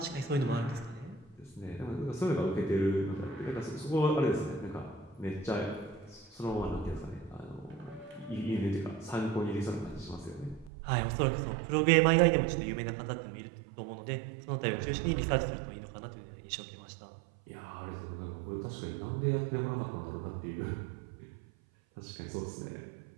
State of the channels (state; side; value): drops out; left; at 10.7 s